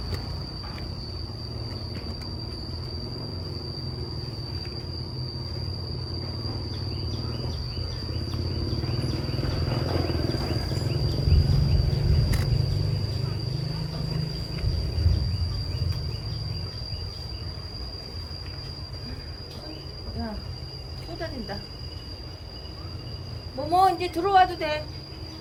야, 쏟아진다. 뭐뭐 이제 들어와도 돼.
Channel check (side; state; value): both; identical; correlation 1.00